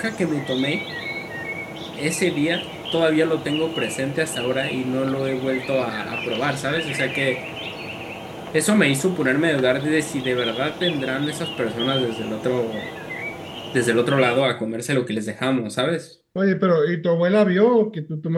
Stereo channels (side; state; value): both; identical; correlation 1.00